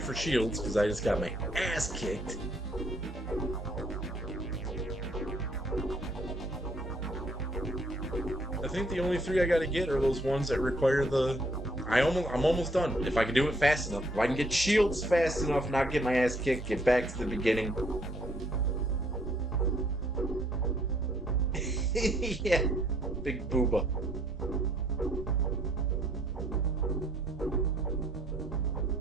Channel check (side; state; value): both; normal; correlation 0.66